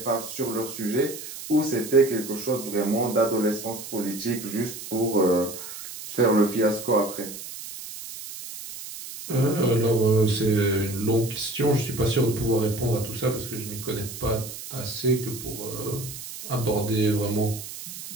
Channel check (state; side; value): noise; right; hiss, 11 dB below the sound